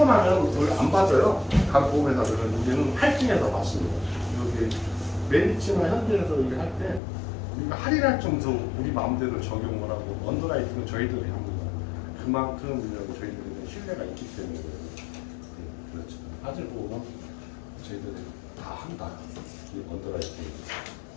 나면 원래 안 받아요. 각 보험회사들은 우리는 할증해서 받습니다. 여기 메리츠나 현대에서 이렇게 할 때 우리가 할인할 정도 우리 마음대로 적용을 하고 언더라이팅은 저희들이 합니다. 그만큼 저희들이 신뢰가 있기 때문에 그렇죠. 화재보험은 저희들이 다 한다. 이 언더라이팅.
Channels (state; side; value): drops out; right; at 7.0 s